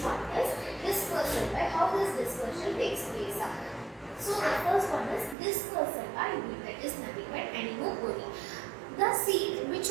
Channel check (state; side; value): drops out; left; at 5.4 s